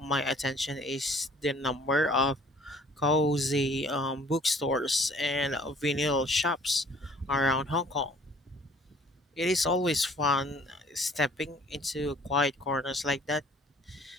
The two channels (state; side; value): normal; both; correlation 0.55